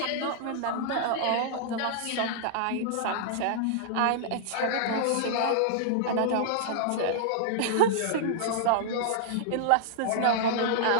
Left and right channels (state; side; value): different; both; correlation -0.01